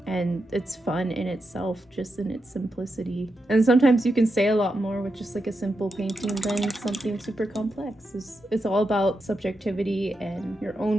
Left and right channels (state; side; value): normal; both; correlation 0.86